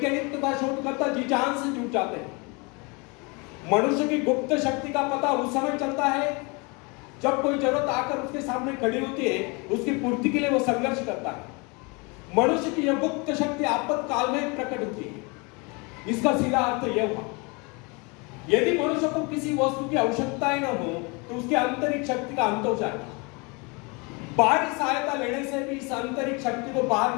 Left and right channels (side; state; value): right; quieter; 29.5 dB